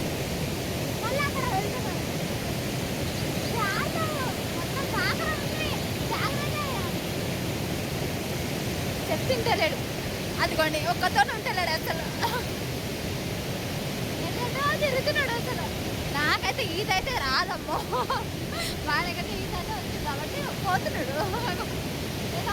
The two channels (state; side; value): identical; both; correlation 1.00